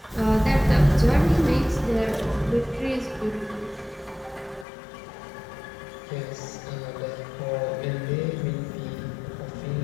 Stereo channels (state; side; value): drops out; right; at 4.7 s